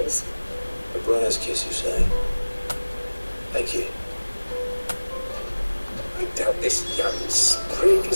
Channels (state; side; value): inverted; both; correlation -1.00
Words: The Briar's Kiss, you say? Thank you. I doubt this young sprig